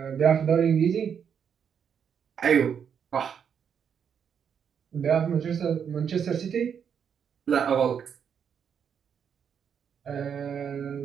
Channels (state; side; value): quieter; left; 7.6 dB